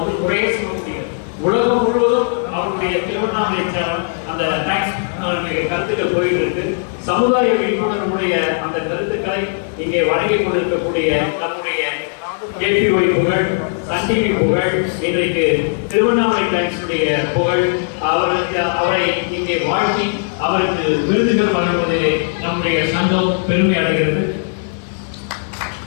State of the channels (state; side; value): silent; right; 66 dB below the other